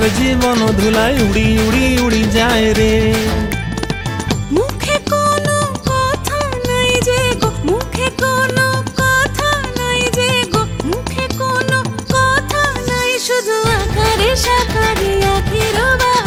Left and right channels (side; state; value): both; identical; correlation 1.00